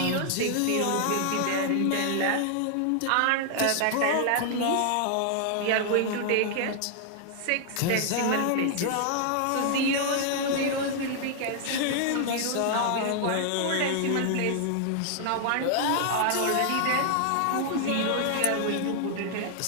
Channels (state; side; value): different; both; correlation 0.00